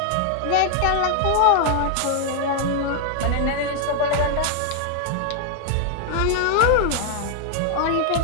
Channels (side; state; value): both; different; correlation 0.00